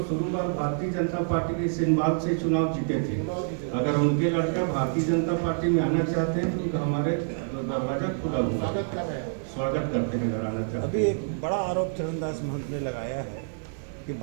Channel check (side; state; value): left; silent; digital silence